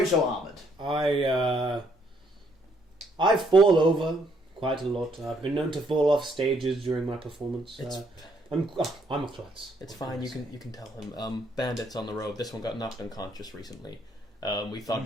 so armoured? I fall over quite a lot. I've been known to fall off stages during my performance. I'm a klutz. It's fine. You can tell him. Bandits on the road. This one got knocked unconscious recently. We thought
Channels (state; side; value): normal; both; correlation 0.69